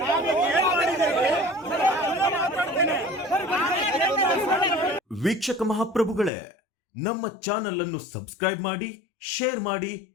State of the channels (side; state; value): right; drops out; at 6.3 s